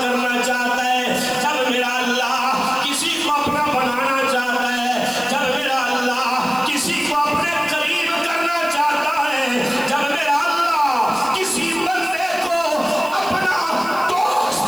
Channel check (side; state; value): right; noise; hiss, 17 dB below the sound